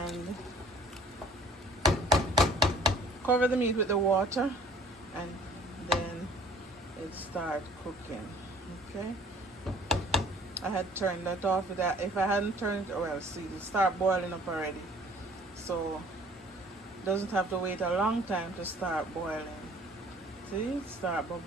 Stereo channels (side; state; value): both; normal; correlation 0.53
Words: cover the meat with the water, and then it start cooking. Okay. I had turned that off. That if I hadn't turned it, well, see, it start boiling up already. So it doesn't have to wait a long time to start boiling. See, it start